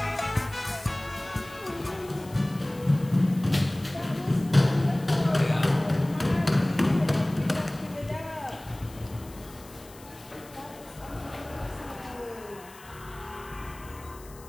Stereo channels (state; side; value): noise; left; hiss, 21 dB below the sound